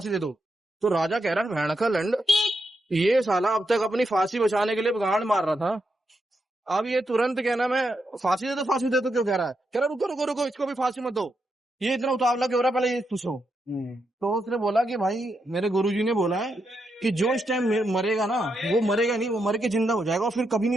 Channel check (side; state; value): both; normal; correlation 0.83